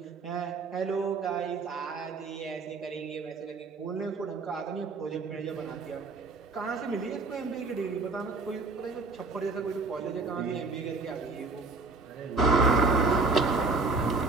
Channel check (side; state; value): left; quieter; 3.8 dB